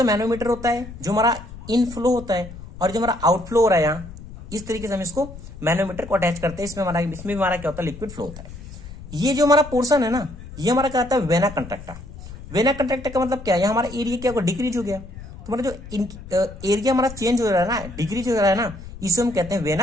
है मैनोमीटर होता है, जो हमारा इनफ्लो होता है, और जो हमारा आउटफ्लो हो रहा है यहाँ, इस तरीके से हम इसको मैनोमीटर को अटैच करते हैं। इसमें हमारा क्या होता है लिक्विड फ्लो होता है। ये जो हमारा पोर्शन है ना, ये हमारा क्या होता है वेना कंट्रैक्टा। वेना कंट्रैक्टा का मतलब क्या है, हमारा एरिया क्या होगा डिक्रीज हो गया, तो हमारा जो एरिया हमारा चेंज हो रहा है ना, डिक्रीज हो रहा है ना, इसे हम कहते हैं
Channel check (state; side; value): noise; left; rumble, 14 dB below the sound